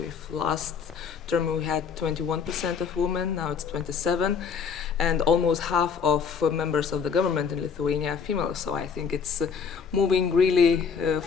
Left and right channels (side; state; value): right; quieter; 6.2 dB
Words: last term we had 21% of women, now it's 27, and almost half of members of the government in Lithuania are female. So I think it's moving really